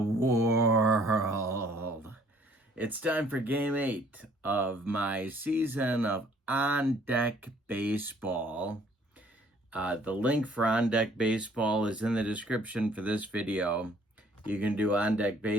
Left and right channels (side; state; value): both; normal; correlation 0.59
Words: World. It's time for Game 8 of my season of On Deck Baseball. The link for On Deck Baseball is in the description for this video. You can do On Deck